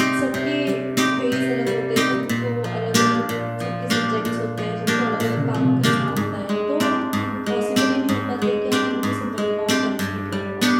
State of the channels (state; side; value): identical; both; correlation 1.00